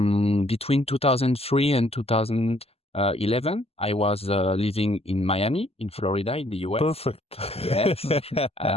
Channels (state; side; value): late; right; 0.29 ms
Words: between 2003 and 2011, I was living in Miami, in Florida, in the US. Perfect. Yes.